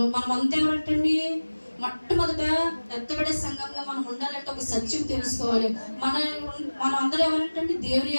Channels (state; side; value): inverted; both; correlation -1.00